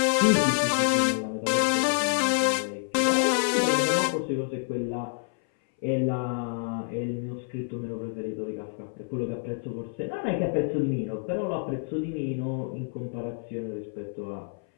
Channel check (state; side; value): silent; right; 60 dB below the other